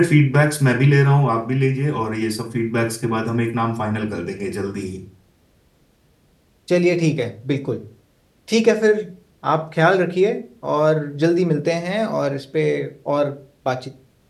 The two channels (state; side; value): identical; both; correlation 1.00